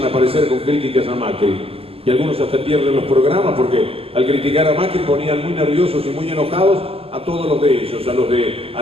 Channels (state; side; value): late; left; 0.28 ms